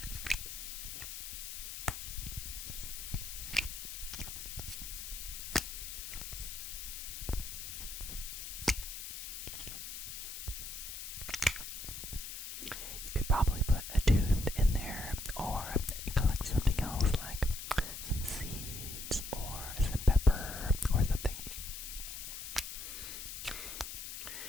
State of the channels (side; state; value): left; noise; hiss, 7 dB below the sound